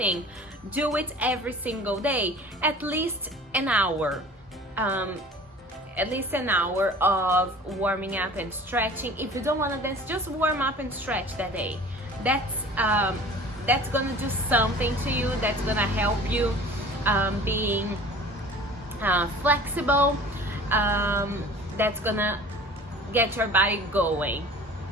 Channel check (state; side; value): normal; both; correlation 0.44